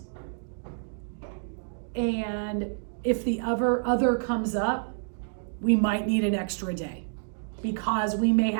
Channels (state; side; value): silent; left; digital silence